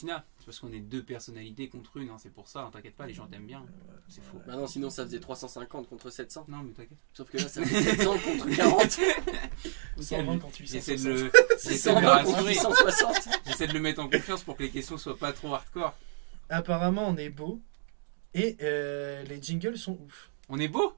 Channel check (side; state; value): left; silent; digital silence